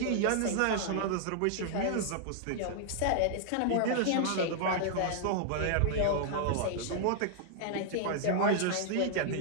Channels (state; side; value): different; both; correlation -0.01